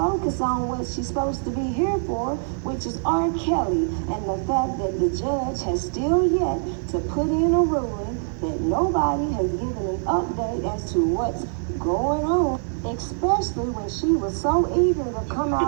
on what she's supposed to be here for, which is R. Kelly, and the fact that the judge has still yet to put in a ruling, that nobody has given an update as to what's going on, especially when she was so eager to come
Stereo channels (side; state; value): left; silent; digital silence